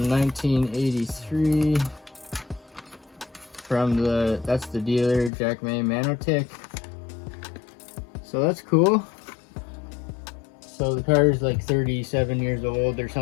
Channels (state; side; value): drops out; right; at 5.3 s